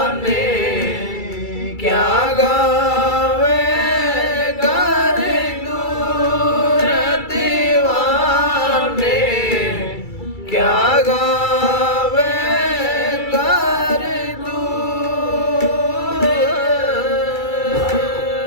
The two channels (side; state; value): right; late; 2.3 ms